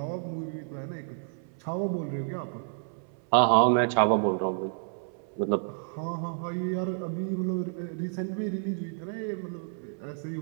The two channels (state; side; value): silent; left; 58 dB below the other